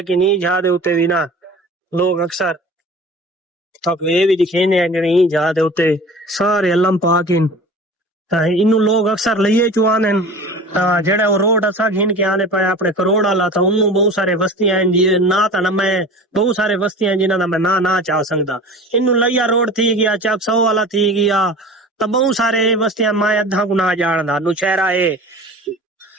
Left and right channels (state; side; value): normal; both; correlation 0.38